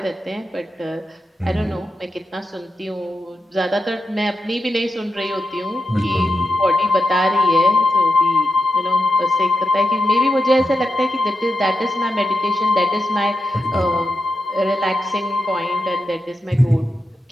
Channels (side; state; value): both; normal; correlation 0.88